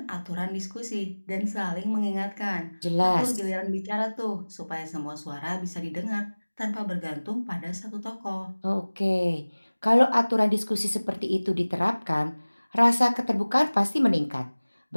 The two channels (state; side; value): inverted; both; correlation -1.00